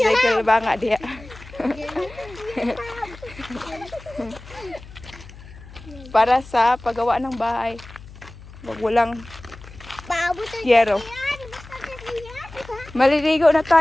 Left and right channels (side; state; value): left; noise; hum, 18 dB below the sound